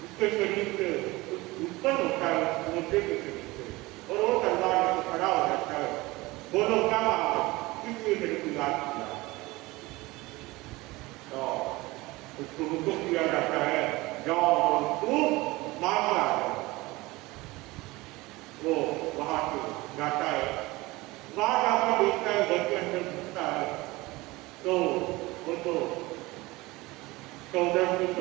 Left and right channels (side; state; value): left; quieter; 21.2 dB